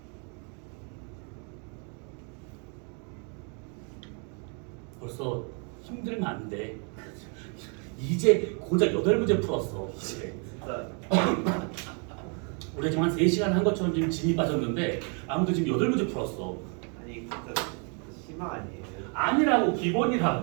벌써 힘들면 안 돼. 이제 고작 8문제 풀었어. 이제. 진짜 우리가 지금 한 3시간 한 것처럼 지금 진이 빠졌는데 아무도 지금 8문제 풀었어. 아니 진짜 심화 아니에요? 아니라고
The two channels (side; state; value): left; quieter; 37.6 dB